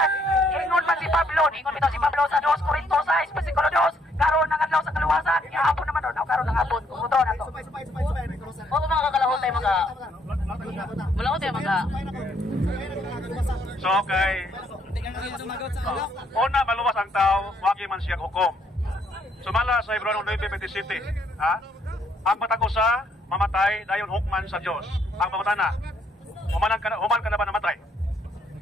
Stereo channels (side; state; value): both; normal; correlation 0.69